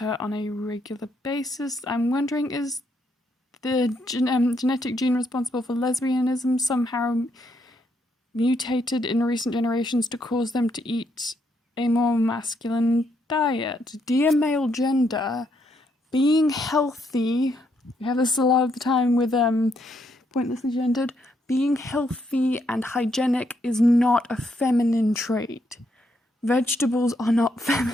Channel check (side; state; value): both; normal; correlation 0.75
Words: on a regular basis. I'm wondering, is the genetic gene responsible for lesbianism somehow mutated in recent generations to cause them to eat a more masculine diet? Dear male gender, being healthy, we have this a lot of the time with pointlessly gendered, being healthy and hygienic is not a feminine trait. Vegetables are not